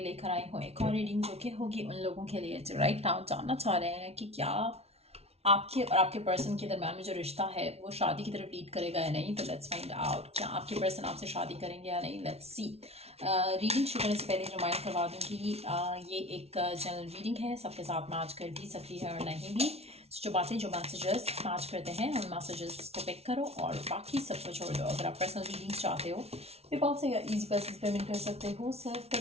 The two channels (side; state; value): left; late; 0.30 ms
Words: लेकर आई हूँ एक और रीडिंग जो कि होगी उन लोगों के लिए जो राइट नाउ जानना चाह रहे हैं कि क्या आपके और आपके पर्सन के दरम्यान में जो रिश्ता है वो शादी की तरफ लीड करेगा या नहीं। तो लेट्स फाइंड आउट क्या आपके पर्सन आपसे शादी करेंगे या नहीं। Let's see. रीडिंग शुरू करने से पहले रिमाइंड करवा दूँ कि ये एक जनरल रीडिंग है, सबके साथ मैच कर भी सकती है और नहीं भी। जो बातें जो मैसेजेस मैच करते हैं उन मैसेजेस को पिक करो और बाकी सबको छोड़ दो। अगर आप पर्सनल रीडिंग्स चाहते हो पेपल से या ईजी पैसेज पेमेंट कर सकते हो, सेल्फ